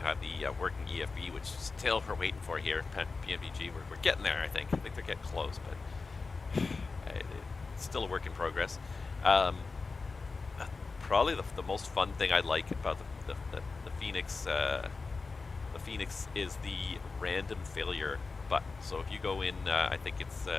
had the working EFB, which still we're waiting for here at PMDG. We're getting there, I think. I think they're getting close, but it's still a work in progress. Probably the most fun thing I like about the Fenix, is the random failure button. So if you go in, I think it's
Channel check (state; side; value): quieter; right; 4.2 dB